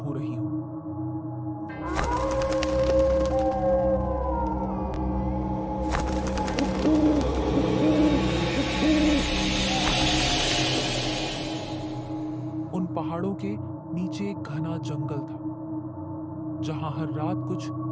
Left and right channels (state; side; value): identical; both; correlation 1.00